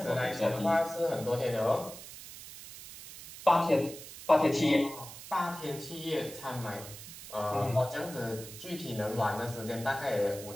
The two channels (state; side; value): noise; right; hiss, 14 dB below the sound